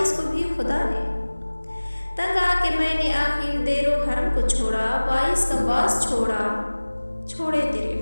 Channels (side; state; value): both; inverted; correlation -1.00